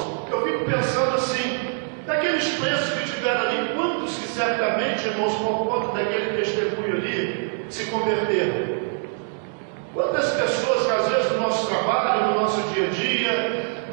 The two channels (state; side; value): silent; left; 61 dB below the other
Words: Eu fico pensando assim, daqueles presos que estiveram ali, quantos que certamente, irmãos, por conta daquele testemunho ali, se converteram? Quantas pessoas que às vezes no nosso trabalho, no nosso dia a dia,